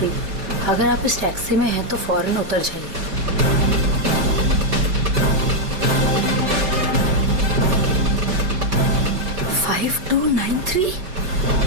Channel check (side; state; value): left; late; 5.2 ms